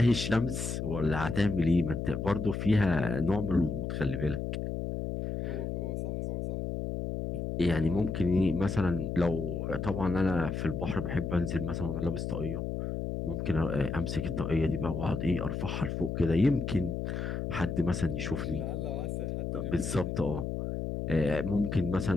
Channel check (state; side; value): noise; left; hum, 3 dB below the sound